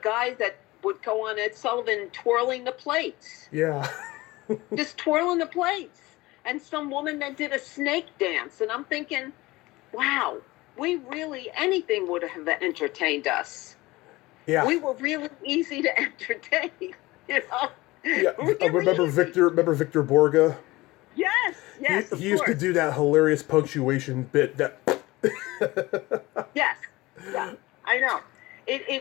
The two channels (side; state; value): right; quieter; 20.2 dB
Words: guy that would go on Ed Sullivan twirling the plates. Yeah. Just twirling the plates. And some woman that did a snake dance. And I'm thinking, wow, anything would have entertained us. Yeah. We were really easy to entertain, Yeah. Really Remember Victor Borga? Yes. He used to do that hilarious punctuation bit that. Yes. Yeah, I know.